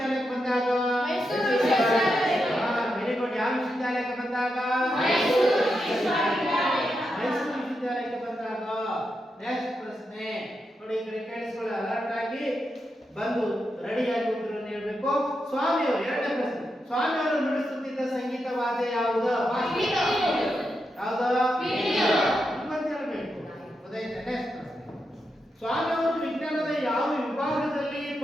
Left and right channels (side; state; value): both; normal; correlation 0.86